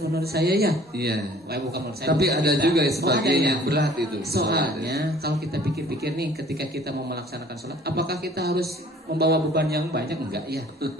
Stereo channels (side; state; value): both; normal; correlation 0.53